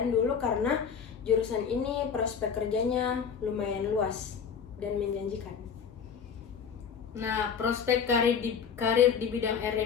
dulu karena jurusan ini prospek kerjanya lumayan luas dan menjanjikan. Nah, prospek karir di bidang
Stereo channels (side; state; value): right; quieter; 6.8 dB